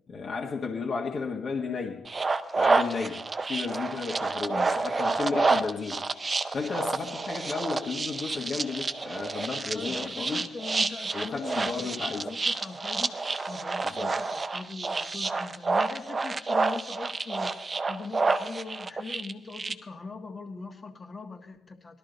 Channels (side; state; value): both; normal; correlation 0.89